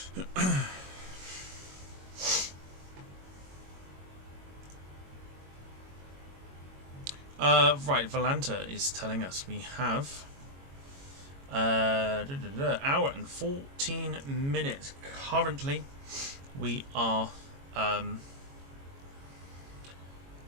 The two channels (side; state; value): left; late; 22 ms